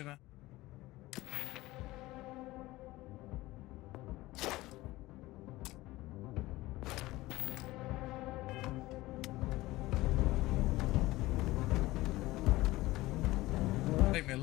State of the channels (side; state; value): right; quieter; 18.6 dB